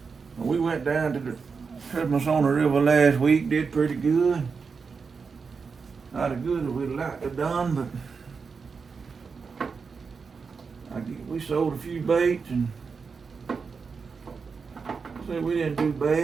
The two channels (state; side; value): quieter; left; 5.2 dB